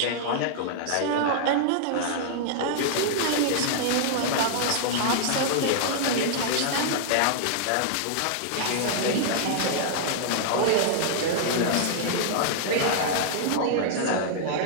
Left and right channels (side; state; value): both; different; correlation -0.01